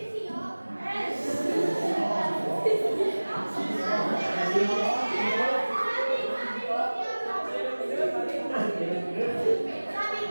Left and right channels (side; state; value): both; inverted; correlation -1.00